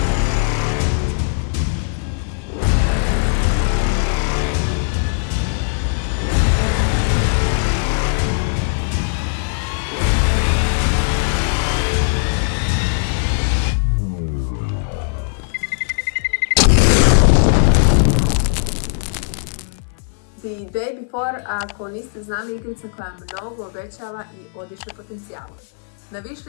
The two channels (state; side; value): silent; right; 59 dB below the other